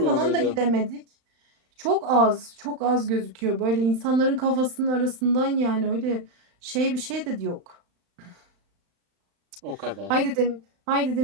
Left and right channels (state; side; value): late; left; 35 ms